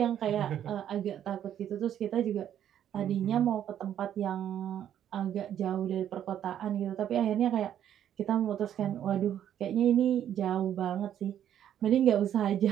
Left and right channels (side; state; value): left; quieter; 10.3 dB